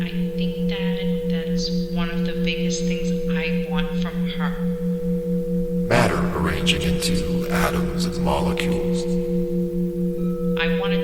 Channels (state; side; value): identical; both; correlation 1.00